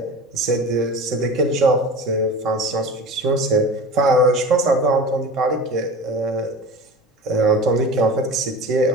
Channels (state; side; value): normal; both; correlation 0.34